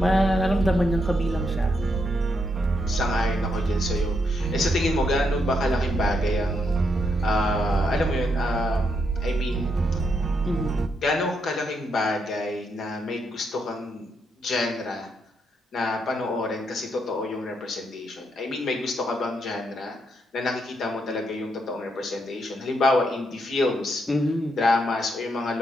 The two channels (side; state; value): both; normal; correlation 0.78